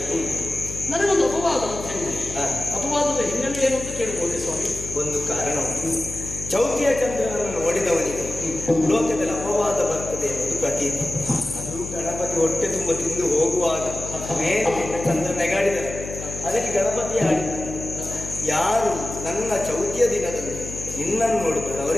ನನಗೊಂದು ಅಪವಾದ ಅಂತ ಹೇಳಿ, ಅಪವಾದದ ಹಿನ್ನೆಲೆ ಏನು ಅಂತ ಕೇಳಬಹುದೇ ಸ್ವಾಮಿ? ಒಂದು ಕಾರಣ ಉಂಟು. ಚೌತಿಯ ಚಂದ್ರನನ್ನು ನೋಡಿದವನಿಗೆ ಲೋಕದಲ್ಲಿ ಅಪವಾದ ಬರ್ತದೆ ಎನ್ನುವುದು ಪ್ರತೀತಿ. ಅದು ಗಣಪತಿ ಹೊಟ್ಟೆ ತುಂಬ ತಿಂದು ಹೋಗುವಾಗ ಮೇಲೆ ಚಂದ್ರ ನೆಗಾಡಿದರೆ ಅದಕ್ಕೆ ಗಣಪತಿ ಆಡಿದ, ಯಾರು ನನ್ನ ಚೌತಿಯ ದಿನದಲ್ಲಿ ನಿನ್ನನ್ನು ನೋಡುತ್ತಾರೆ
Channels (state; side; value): noise; left; hum, 10 dB below the sound